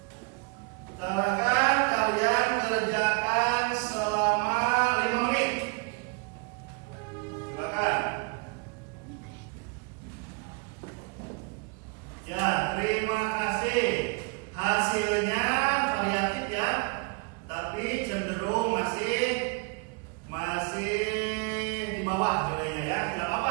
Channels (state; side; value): quieter; left; 32.3 dB